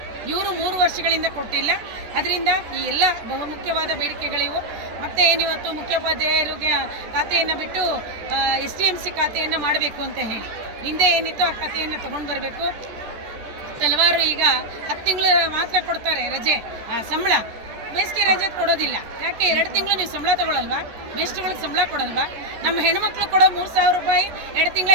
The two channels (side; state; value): left; late; 14 ms